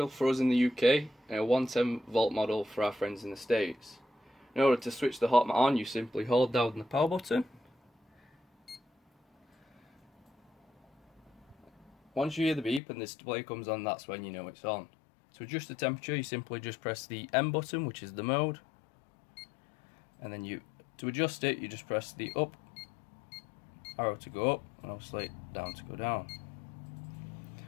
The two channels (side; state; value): right; drops out; at 12.8 s